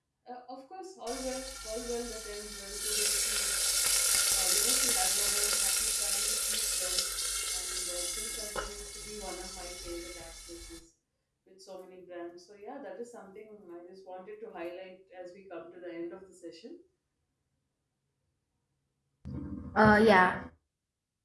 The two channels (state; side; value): identical; both; correlation 1.00